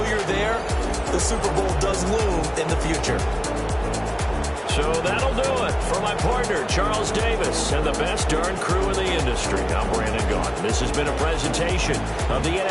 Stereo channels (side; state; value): both; identical; correlation 1.00